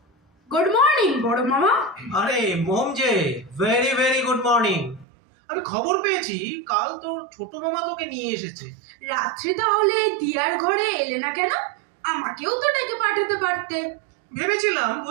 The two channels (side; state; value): left; drops out; at 5.1 s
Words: গুড মর্নিং বড় মামা। আরে মোম যে, ভেরি ভেরি গুড মর্নিং। আমি খবর পেয়েছি কাল তোর ছোট মামা তোকে নিয়ে এসেছে। রাত্রে তাহলে দিয়ার ঘরে এলে না কেন? আমাকেও তো ডেকে পাঠাতে পারতে। ভেবেছিলাম